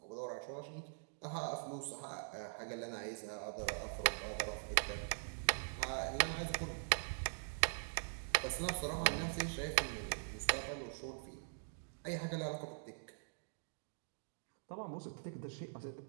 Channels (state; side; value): silent; left; digital silence